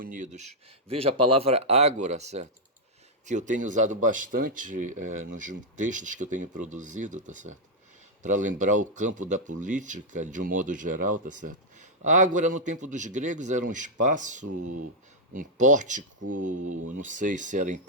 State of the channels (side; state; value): both; normal; correlation -0.03